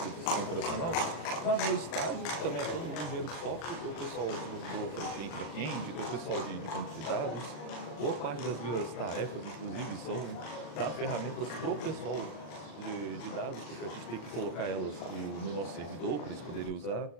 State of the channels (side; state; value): right; late; 40 ms